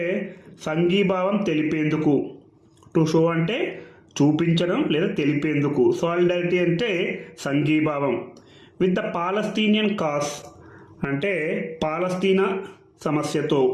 సంఘీభావం తెలిపేందుకు. టు షో అంటే చూపించడం లేదా తెలిపేందుకు. సాలిడారిటీ అంటే సంఘీభావం. విత్ ద పాలస్తీనియన్ కాజ్ అంటే పాలస్తీనా సమస్యతో.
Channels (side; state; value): both; identical; correlation 1.00